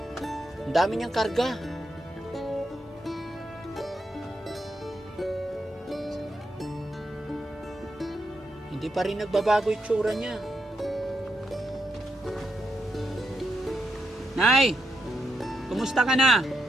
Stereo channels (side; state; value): both; normal; correlation 0.82